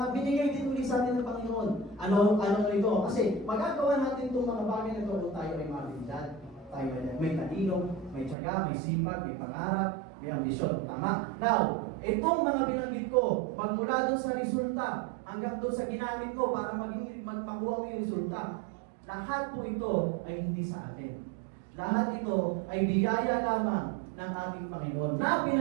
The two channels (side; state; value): left; drops out; at 8.3 s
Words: binigay din ulit sa atin ng Panginoon. Ano ito? Kasi magagawa natin itong mga bagay na ito kung tayo ay mabilidad. Tayo ay may talino, may tiyaga, may sipag, may pangarap, may ambisyon. Tama? Now, itong mga binanggit ko, magmula doon sa resulta, hanggang doon sa ginamit ko para magpakuha mo yung resulta, lahat po ito ay hindi sa atin. Lahat ito ay biyaya lamang ng ating Panginoon na